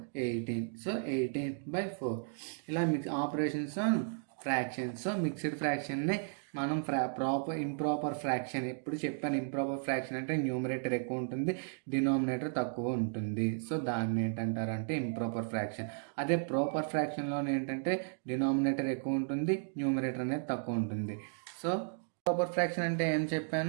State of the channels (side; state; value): left; silent; digital silence